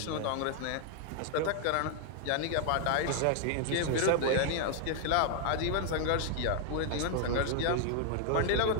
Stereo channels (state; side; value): different; both; correlation 0.00